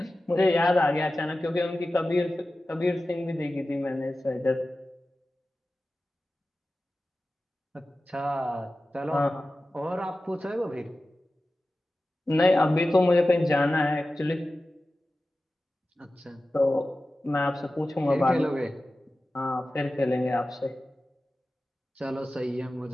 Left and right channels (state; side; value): normal; both; correlation 0.95